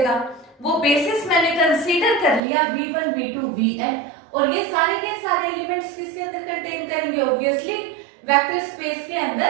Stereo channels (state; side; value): drops out; left; at 2.4 s